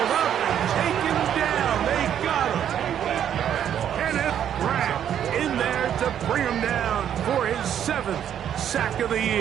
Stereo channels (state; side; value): quieter; left; 9.6 dB